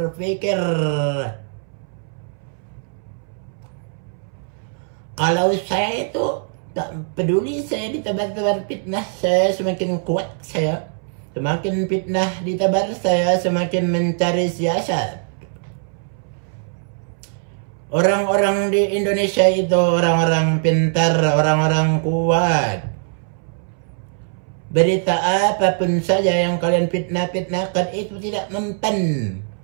Kalau saya itu tak peduli, saya ditebar fitnah, saya semakin kuat saya. Semakin fitnah ditebar, saya semakin mencari siasat. Orang-orang di Indonesia itu orang-orang pintar, orang-orang kuat. Berita apapun saja yang kalian fitnahkan itu tidak mempan.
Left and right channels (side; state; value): left; silent; 65 dB below the other